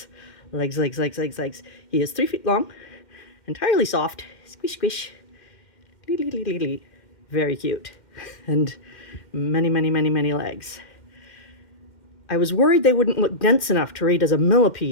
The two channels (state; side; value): late; right; 2.1 ms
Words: He is 3 feet long, entirely soft, squish squish, very cute, and many legs. I was worried they wouldn't look dense enough to read as a